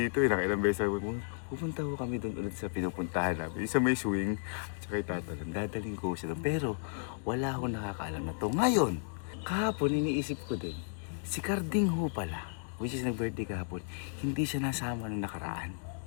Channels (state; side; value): silent; right; digital silence